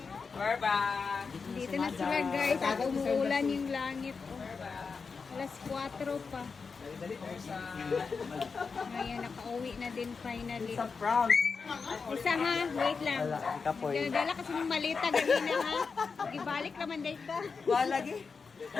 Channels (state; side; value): quieter; right; 5.1 dB